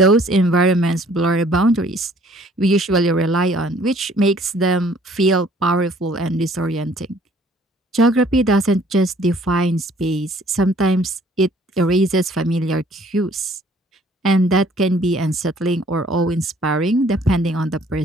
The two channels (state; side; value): normal; both; correlation 0.58